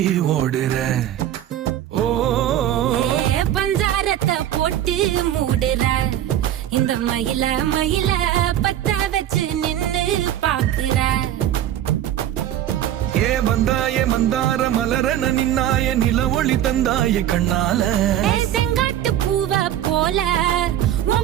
ஓடுற. ஓ பஞ்சாரத்தை போட்டு மூடுற இந்த மயில மயில பத்த வச்சு நின்னு பாக்குற. ஏ வந்தாய மந்தார மலரன நின்னாய நில ஒளி தந்தாய கண்ணால. செங்காட்டு பூவ போல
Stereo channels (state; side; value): quieter; left; 11.6 dB